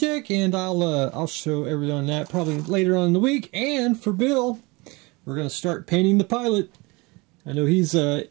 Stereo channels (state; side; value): quieter; left; 25.5 dB